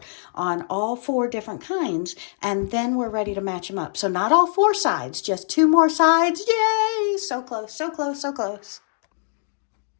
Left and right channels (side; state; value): right; silent; digital silence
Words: on all 4 different kinds, and then we're ready to match them up. So not all 4 sides, just 2 more sides. Yay! So close, so close, so close.